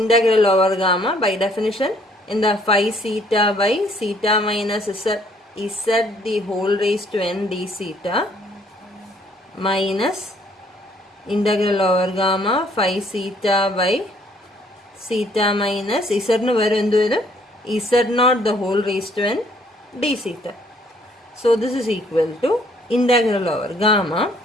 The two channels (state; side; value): normal; both; correlation 0.63